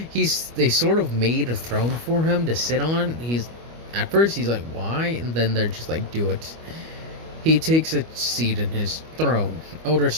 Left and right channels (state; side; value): late; left; 25 ms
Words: sort of made a throne for him to sit on. At first he's like, why? And then they're just like, do it. He takes a seat in his throne, Elder